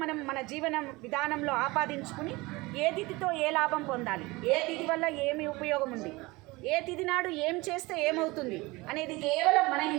మనం మన జీవన విధానంలో ఆపాదించుకుని ఏ తిథితో ఏ లాభం పొందాలి, ఏ తిథి వల్ల ఏమి ఉపయోగం ఉంది, ఏ తిథి నాడు ఏం చేస్తే ఏమవుతుంది అనేది కేవలం మన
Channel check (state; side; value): quieter; left; 22.6 dB